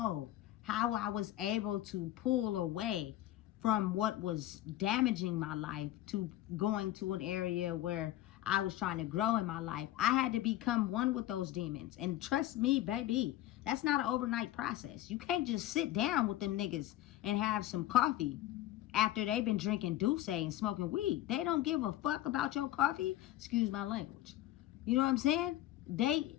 how I was able to pull away from what was damaging my life to going to an area where I was trying to grow in my life. I had to become one with those demons. And trust me, baby, that's not an overnight process. You can't just sit down with them niggas and have some coffee after they've been drinking Douce and smoking weed. They don't give a fuck about your coffee. Excuse my language. You know what I'm saying? They,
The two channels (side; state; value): right; quieter; 14.3 dB